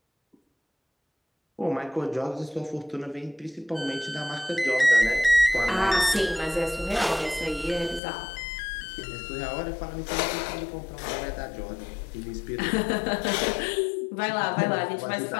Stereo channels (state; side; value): drops out; right; at 8.0 s